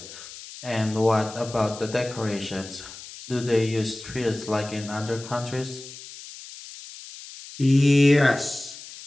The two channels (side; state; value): left; noise; hiss, 15 dB below the sound